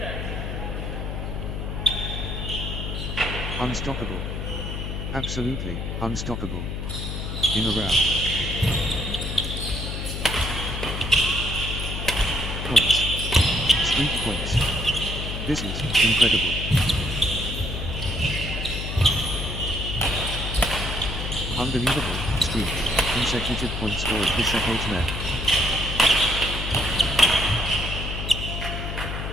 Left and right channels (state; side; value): noise; left; hum, 4 dB below the sound